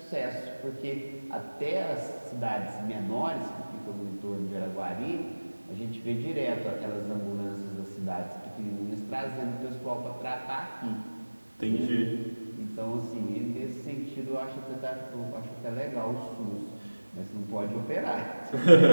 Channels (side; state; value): both; inverted; correlation -1.00